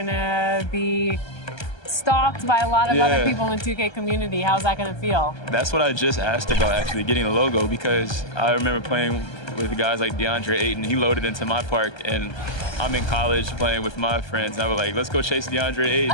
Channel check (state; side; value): late; right; 1.3 ms